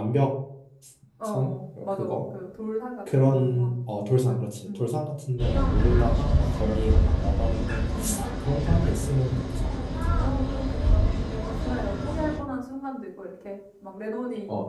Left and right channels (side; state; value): both; identical; correlation 1.00